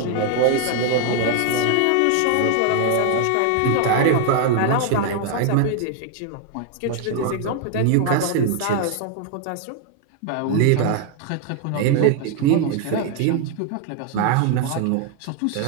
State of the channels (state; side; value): different; both; correlation 0.00